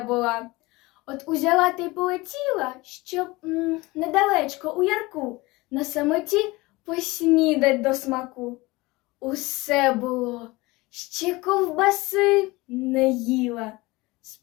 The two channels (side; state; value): right; quieter; 22.0 dB